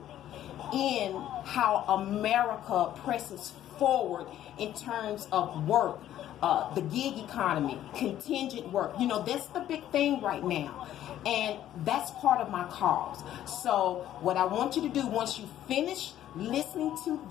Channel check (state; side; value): quieter; right; 12.0 dB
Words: in how America presses forward in terms of work, the gig economy, contingent work. You know, that's the big thing right now. And that's part of my cause. So what I want you to do once you finish listening to